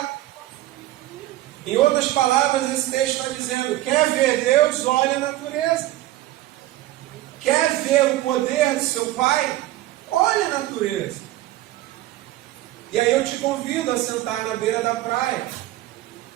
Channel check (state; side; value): quieter; left; 15.7 dB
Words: Em outras palavras, esse texto está dizendo: quer ver Deus? Olha a natureza. Quer ver o poder do seu Pai? Olha a natureza. E aí eu te convido a sentar na beira da praia